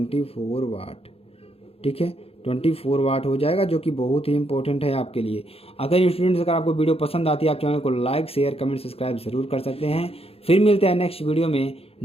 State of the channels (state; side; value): late; right; 0.28 ms